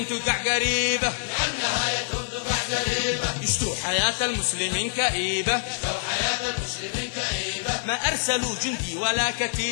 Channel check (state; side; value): silent; right; digital silence